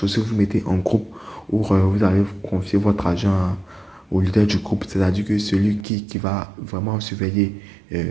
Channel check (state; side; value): drops out; left; at 5.9 s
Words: vous mettez en groupe où vous allez confier votre argent au leader du groupe, c'est-à-dire que celui qui va vraiment surveiller